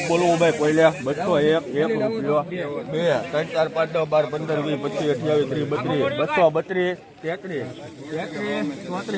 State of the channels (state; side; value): identical; both; correlation 1.00